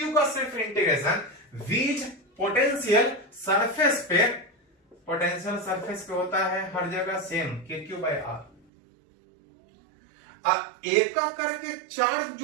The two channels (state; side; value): drops out; left; at 8.6 s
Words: का सिर्फ इंटीग्रेशन। वीज पोटेंशियल सरफेस पे पोटेंशियल सरफेस पे होता है हर जगह सेम KQ/R। एक करके चार्ज